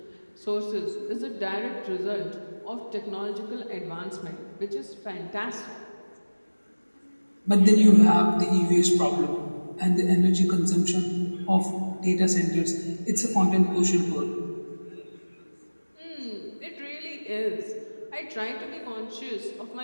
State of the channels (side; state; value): both; inverted; correlation -1.00